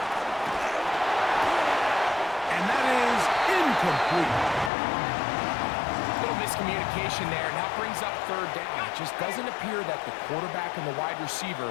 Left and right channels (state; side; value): drops out; right; at 4.7 s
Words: And that is incomplete. Little miscommunication there. Now brings up 3rd down. It just doesn't appear that the quarterback and the wide receiver